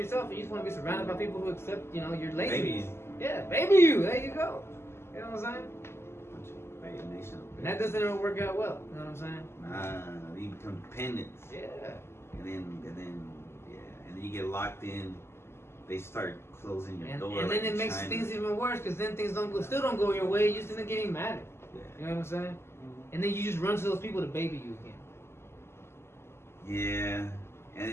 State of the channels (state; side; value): late; right; 0.12 ms